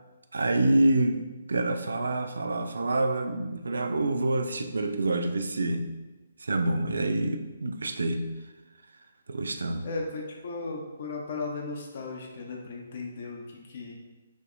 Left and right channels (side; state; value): both; inverted; correlation -0.86